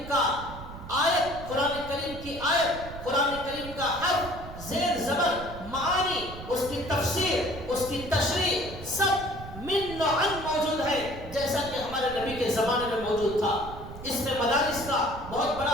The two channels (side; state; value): right; noise; rumble, 12 dB below the sound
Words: کا آیت, قرآن کریم کی آیت, قرآن کریم کا حرف, زیر زبر, معانی, اس کی تفسیر, اس کی تشریح سب من نوعاً موجود ہے جیسا کہ ہمارے نبی کے زمانے میں موجود تھا. اس میں مدارس کا بہت